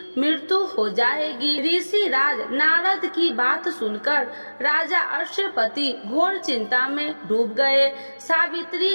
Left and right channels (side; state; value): both; inverted; correlation -1.00